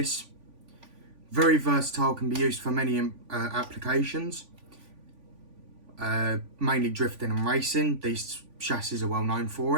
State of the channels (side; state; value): left; late; 3.5 ms